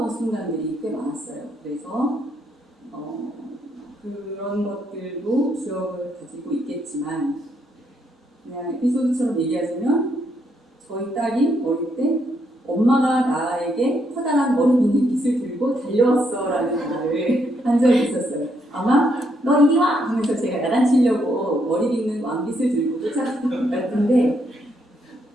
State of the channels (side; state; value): both; normal; correlation 0.75